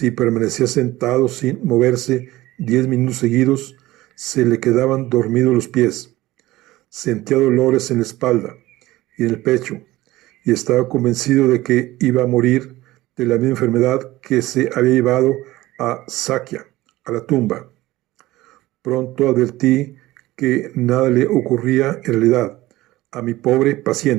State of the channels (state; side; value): quieter; left; 17.6 dB